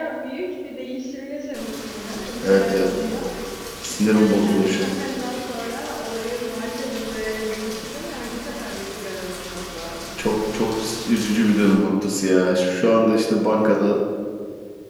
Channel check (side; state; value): both; identical; correlation 1.00